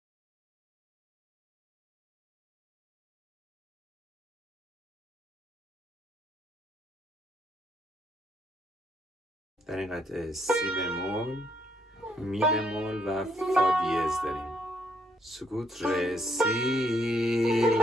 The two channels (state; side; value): normal; both; correlation 0.71